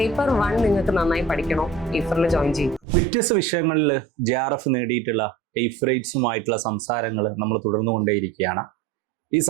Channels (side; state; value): left; drops out; at 2.8 s